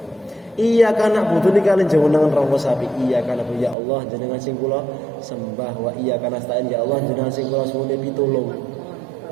Iya kana butuh niki kalian jenengan rawa sapi. Iya kana ya Allah jenengan sing kula sembah wa iya kana stain ya Allah jenengan sing kula suwune pitulung.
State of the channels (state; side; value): drops out; left; at 3.8 s